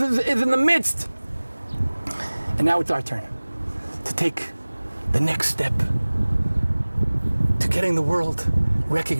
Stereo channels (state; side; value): inverted; both; correlation -1.00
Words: is in the midst. And now it's our turn to take the next step to getting the world